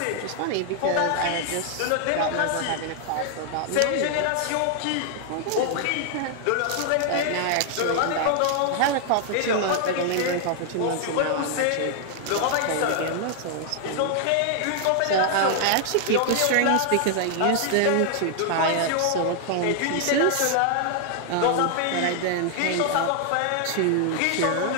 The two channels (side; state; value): both; different; correlation 0.00